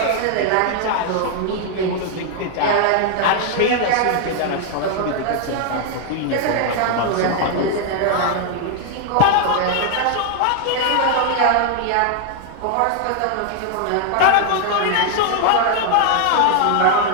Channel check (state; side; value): different; both; correlation 0.00